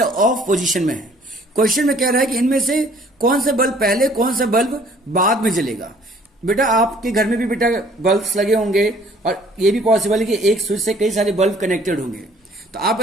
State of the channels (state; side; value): normal; both; correlation 0.57